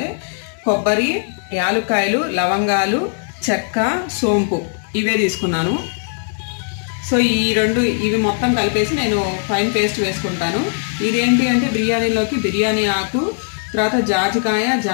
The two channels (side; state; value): right; silent; digital silence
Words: కొబ్బరి, యాలుక్కాయలు, లవంగాలు, చెక్క, సోంపు ఇవే తీసుకున్నాను. సో ఇవి మొత్తం కలిపేసి నేను ఫైన్ పేస్ట్ వేసుకుంటాను. ఇదేంటి అంటే బిర్యానీలోకి బిర్యానీ ఆకు, తర్వాత జాజికాయ,